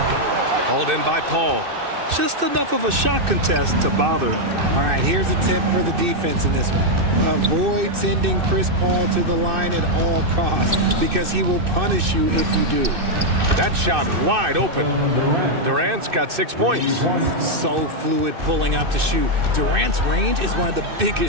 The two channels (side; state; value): left; late; 2.6 ms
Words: in by Paul. Just enough of a shot contest to bother him. All right, here's a tip for the defense in this one. Avoid sending Chris Paul to the line at all costs because he will punish you if you do. That shot wide open. Durant's got 6 points. So fluid pulling up to shoot. Durant's range is one of the